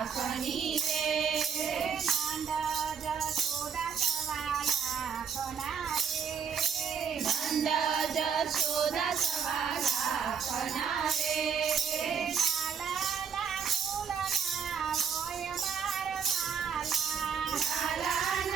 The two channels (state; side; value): quieter; left; 7.0 dB